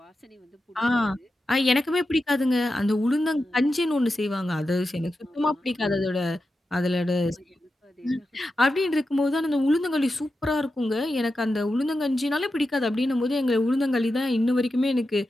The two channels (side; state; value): both; normal; correlation 0.90